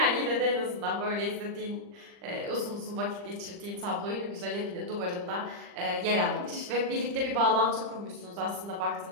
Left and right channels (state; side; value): late; left; 40 ms